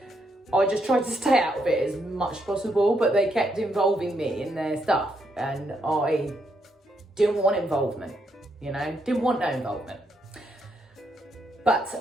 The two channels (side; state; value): both; normal; correlation 0.77